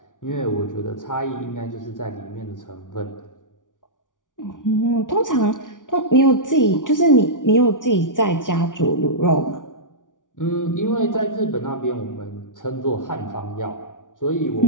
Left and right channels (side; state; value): right; late; 0.88 ms